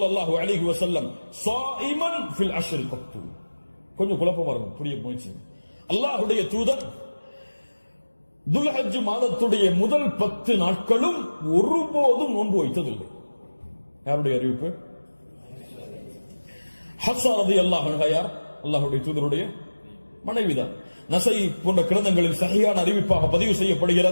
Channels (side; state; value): both; inverted; correlation -1.00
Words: அலைஹி வஸல்லம் ஸாயிமன் ஃபில் அஷ்ர் கத்து. கொஞ்சம் குழப்பமா இருக்கும், புரிய முயற்சி. அல்லாஹ்வுடைய தூதர் துல்ஹஜ் மாதத்துடைய முதல் 10 நாட்களும் ஒருபோதும் நோன்பு வைத்ததில்லை. யாருடைய அறிவிப்பு? ஹஃப்ஸா ரலியல்லாஹு அன்ஹா யார்? அல்லாஹ்வுடைய தூதருடைய மனைவிதான். நஸை போன்ற கிரந்தங்களில் சஹீஹான அறிவிப்பாக பதிவு